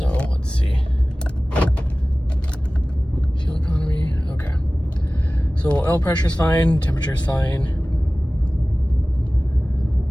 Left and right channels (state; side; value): normal; both; correlation 0.98